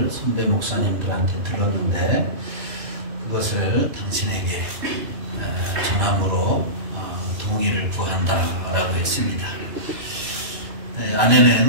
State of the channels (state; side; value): late; left; 3.1 ms